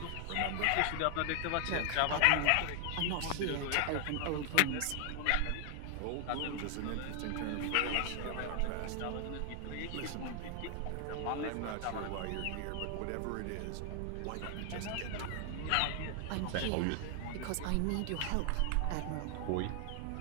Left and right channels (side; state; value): both; different; correlation 0.00